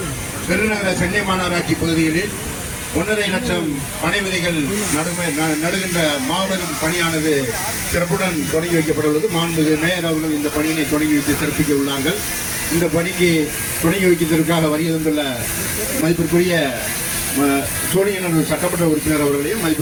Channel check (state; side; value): identical; both; correlation 1.00